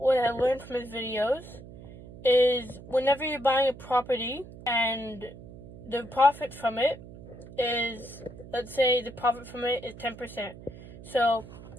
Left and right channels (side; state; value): right; noise; hum, 16 dB below the sound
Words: I learned from his videos is whenever you're buying a property and the profit from it is, let's say the profit from it is 10%. So